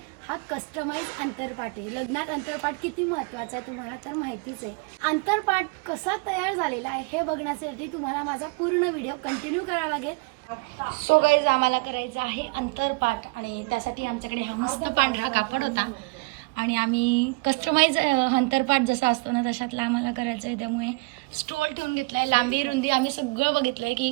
हा कस्टमाइज अंतरपाट आहे. लग्नात अंतरपाट किती महत्वाचा आहे तुम्हाला तर माहितीच आहे. अंतरपाट कसा तयार झालेला आहे हे बघण्यासाठी तुम्हाला माझा पूर्ण व्हिडिओ कंटिन्यू करावा लागेल. सो गाईज आम्हाला करायचं आहे अंतरपाट आणि त्यासाठी आमच्याकडे हा मस्त पांढरा कापड होता आणि आम्ही कस्टमाइज अंतरपाट जसा असतो ना तशातला आम्हाला करायचं आहे. त्यामुळे स्टोल ठेवून घेतलाय, लांबी रुंदी आम्ही सगळं बघितलंय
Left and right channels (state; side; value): quieter; left; 27.3 dB